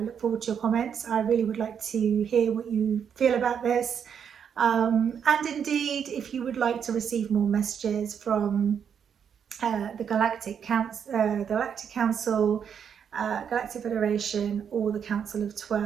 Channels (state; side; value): quieter; left; 7.7 dB